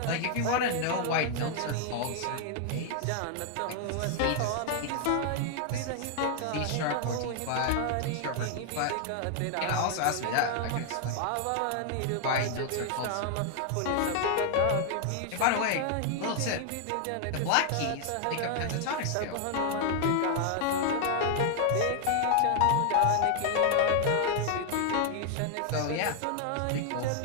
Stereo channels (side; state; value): both; different; correlation 0.00